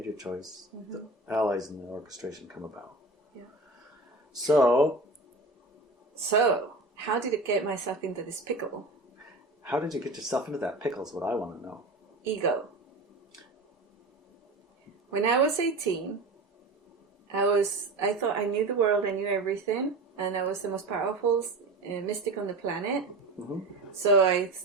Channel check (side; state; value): left; quieter; 3.0 dB